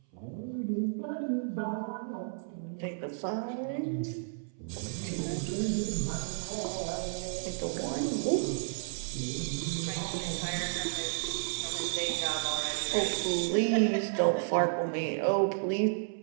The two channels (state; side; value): silent; left; 56 dB below the other